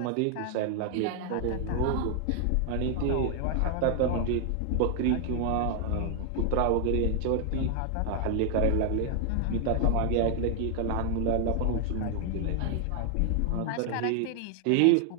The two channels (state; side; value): different; both; correlation 0.00